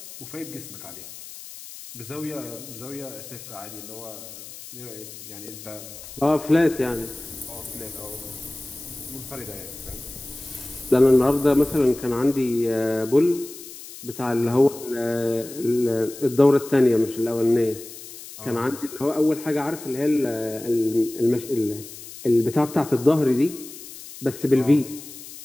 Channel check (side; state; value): left; noise; hiss, 14 dB below the sound